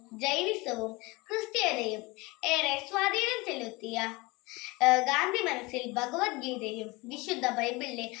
ജൈനിസവും ക്രിസ്ത്യതയും ഏറെ സ്വാധീനം ചെലുത്തിയ ഗാന്ധി മനസ്സിൽ ഭഗവത്ഗീതയും വിശുദ്ധ ബൈബിളിലെ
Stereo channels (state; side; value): quieter; right; 23.9 dB